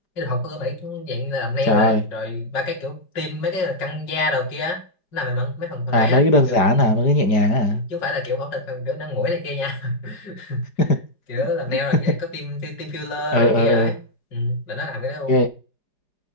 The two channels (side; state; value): right; late; 5.0 ms